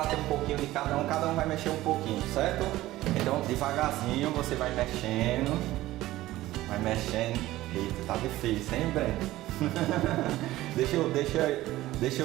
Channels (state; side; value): quieter; left; 16.3 dB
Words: ter um pouquinho de cada um vai mexer um pouquinho, certo? Então, devagarzinho você vai mexendo. Eita, tá difícil, hein, Breno? deixa